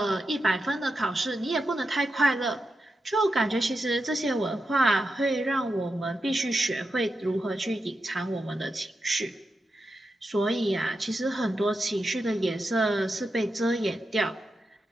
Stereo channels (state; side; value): normal; both; correlation 0.88